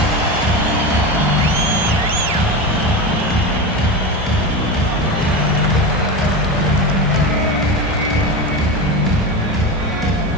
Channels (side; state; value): both; normal; correlation 0.22